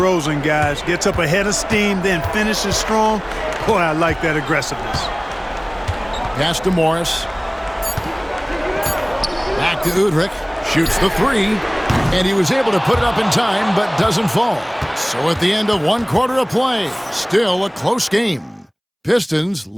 guys. Gets up ahead of steam, then finishes strong. Boy, I like that aggressiveness. Pass to Morris. Back to Udrich. Shoots the 3. And he was able to put it up in time, but doesn't fall. So at the end of 1 quarter of play, still a close game. Pistons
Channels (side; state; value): both; identical; correlation 1.00